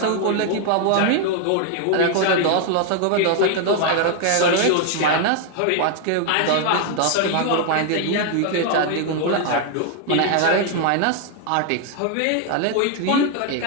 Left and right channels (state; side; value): different; both; correlation 0.00